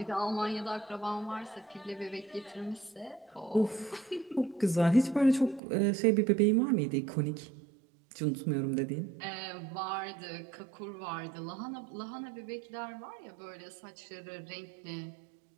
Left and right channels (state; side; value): drops out; left; at 5.6 s